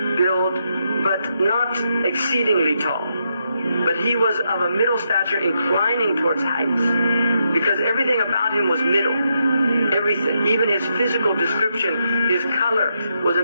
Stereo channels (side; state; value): both; inverted; correlation -0.81